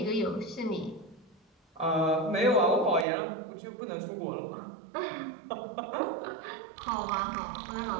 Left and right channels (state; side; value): drops out; left; at 3.1 s